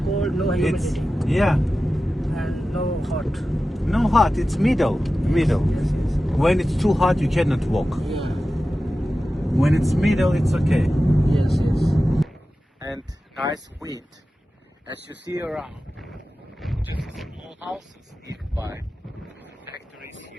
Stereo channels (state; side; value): normal; both; correlation 0.94